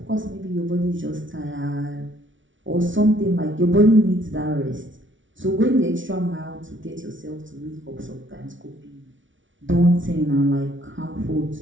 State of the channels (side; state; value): left; late; 0.56 ms